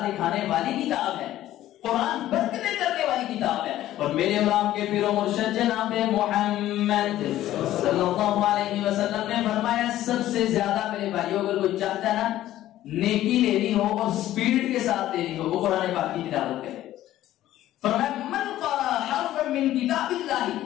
دکھانے والی کتاب ہے، قرآن برکتیں کرنے والی کتاب ہے. اور میرے اور آپ کے پیر و مرشد جناب محمد صلی اللہ علیہ وسلم نے فرمایا سب سے زیادہ میرے بھائیوں اگر کوئی چاہتا ہے نا نیکی لینی ہو اور سپیڈ کے ساتھ لینی ہو، وہ قرآن پاک کی تلاوت کرے. فرمایا من قرأ حرفا من کتاب اللہ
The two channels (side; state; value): right; quieter; 13.8 dB